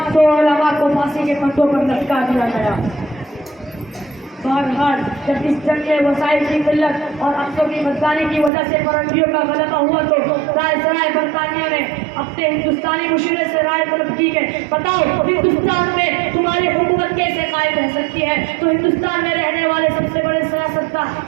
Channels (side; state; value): left; drops out; at 8.5 s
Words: उलमा को फांसी के फंदों पर लटका दिया गया। فرحان جب اس جنگ میں وسائل کی قلت اور افسوں کی بدکاری کی وجہ سے فرنگیوں کا غلبہ ہوا تو رائے سرائے برطانیہ نے اپنے ہندوستانی مشورے سے رائے طلب کی کہ بتاؤ ہندوستان میں تمہاری حکومت کیسے قائم رہ سکتی ہے. تو ہندوستان میں رہنے والے سب سے بڑے سیاستدان